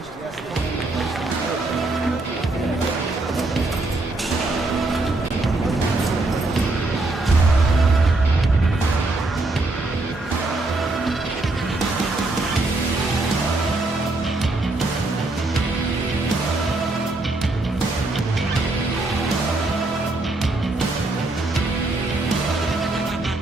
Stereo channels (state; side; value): quieter; left; 3.0 dB